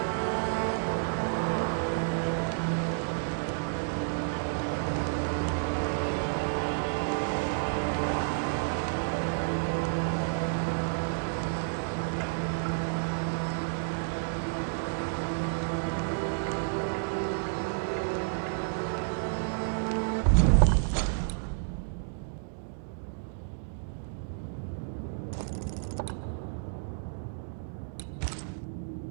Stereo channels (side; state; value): left; silent; digital silence